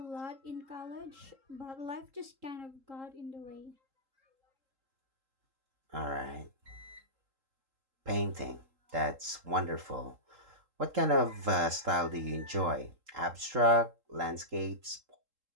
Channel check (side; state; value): left; late; 3.7 ms